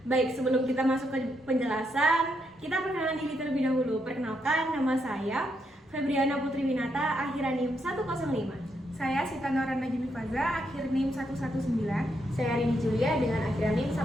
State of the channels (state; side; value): normal; both; correlation 0.79